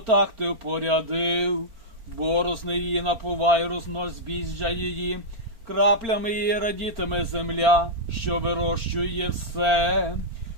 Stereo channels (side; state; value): left; late; 4.4 ms